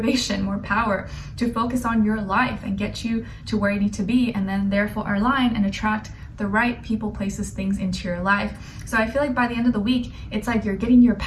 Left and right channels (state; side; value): identical; both; correlation 1.00